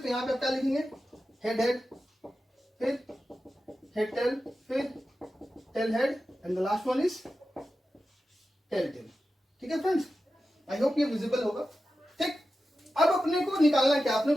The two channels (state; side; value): normal; both; correlation 0.92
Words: यहाँ पे आप क्या लिखेंगे, हेड हेड, फिर हेड टेल, फिर tail head, and the last one is tail tail, ठीक है फ्रेंड्स। आई होप ये विजिबल होगा, ठीक। अब अपने को निकालना क्या, अपने